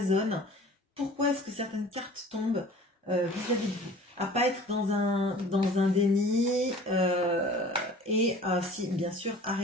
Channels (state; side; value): normal; both; correlation 0.46